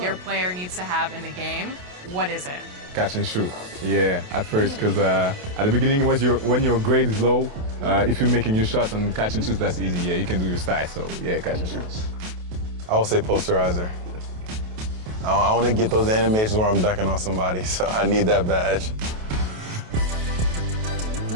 your player needs to have in the game, what is it? Catch and shoot. Yeah, at first, because at the beginning, when your grade is low, if you're making your shots and catch and shoots, that's easy. Yeah, you can do your style. So yeah, catch and shoot. I would say posterizer. I want to get those animations where I'm dunking on somebody, so I need that badge.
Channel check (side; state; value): left; late; 28 ms